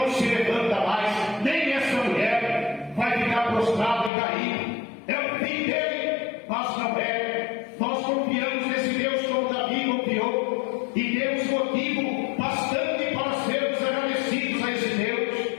se levanta mais, nem essa mulher vai ficar prostrada e cair, é o fim dele. Mas não é. Nós confiamos nesse Deus como Davi confiou, e temos motivo bastante para sermos agradecidos a esse Deus,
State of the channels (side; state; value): right; drops out; at 4.1 s